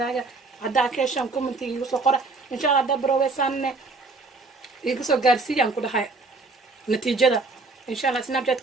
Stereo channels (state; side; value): quieter; left; 3.7 dB